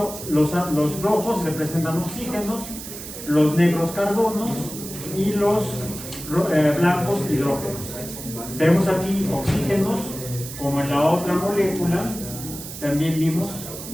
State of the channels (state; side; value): noise; right; hiss, 11 dB below the sound